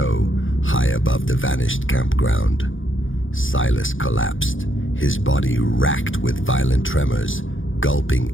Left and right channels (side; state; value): right; late; 0.57 ms